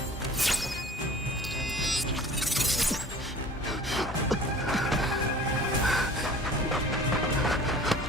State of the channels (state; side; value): normal; both; correlation 0.44